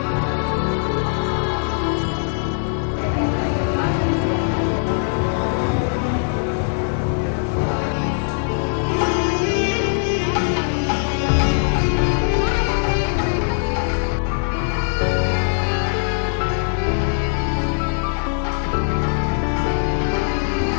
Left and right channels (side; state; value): right; silent; 65 dB below the other